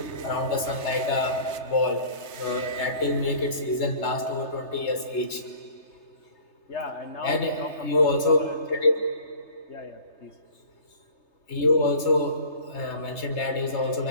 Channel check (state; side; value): late; right; 3.3 ms